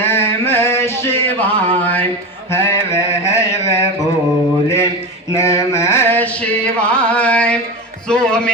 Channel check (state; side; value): normal; both; correlation 0.23